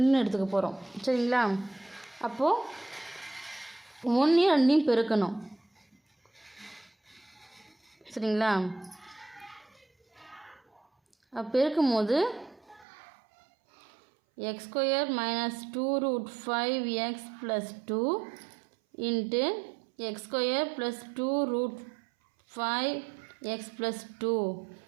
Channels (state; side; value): drops out; left; at 12.9 s